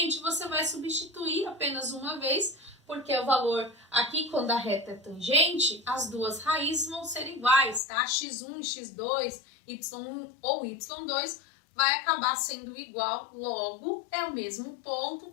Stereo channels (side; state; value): right; drops out; at 7.8 s